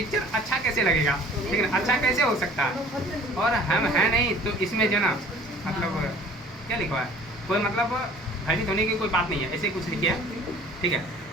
अच्छा कैसे लगेगा? ठीक है, अच्छा कैसे हो सकता है? और हम हैं नहीं तो इसमें जो ना मतलब क्या लिखा है, कोई मतलब भयभीत होने की कोई बात नहीं है, ऐसे कुछ लिखे है। ठीक है,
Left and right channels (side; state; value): both; normal; correlation 0.49